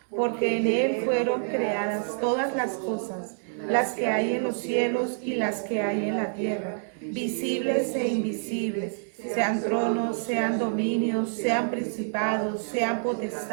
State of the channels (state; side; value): silent; left; digital silence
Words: porque en Él fueron creadas todas las cosas, las que hay en los cielos y las que hay en la tierra, visibles e invisibles, sean tronos, sean dominios, sean principados, sean